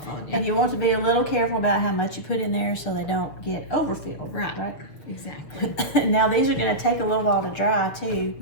on you. And you want to be a little careful about how much you put in there so they don't get overfilled. Right. Exactly. Now these are going to take a little while to dry too.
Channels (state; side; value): late; right; 7.0 ms